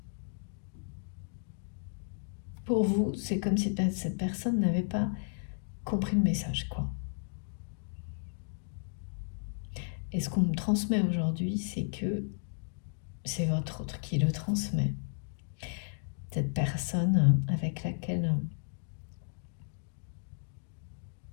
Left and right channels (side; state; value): right; silent; digital silence